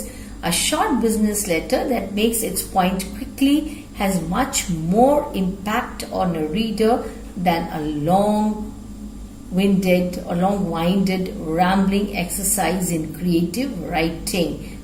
A short business letter that makes its point quickly has much more impact on a reader than a long-winded rambling exercise in creative writing.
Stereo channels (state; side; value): identical; both; correlation 1.00